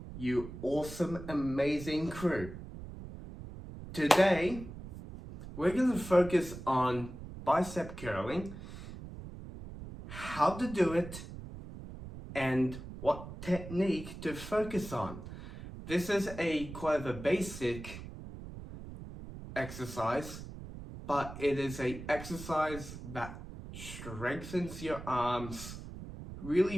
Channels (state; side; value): noise; right; rumble, 11 dB below the sound